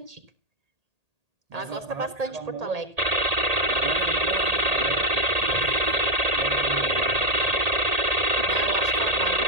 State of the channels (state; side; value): late; left; 1.8 ms